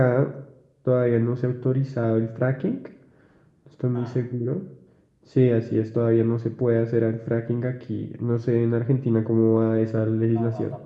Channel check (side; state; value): both; identical; correlation 1.00